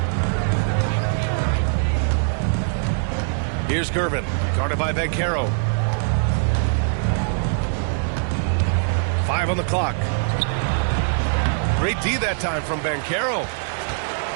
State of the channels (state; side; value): silent; left; digital silence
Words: Here's Gervin, guarded by Banchero. 5 on the clock. Great D that time from Banchero.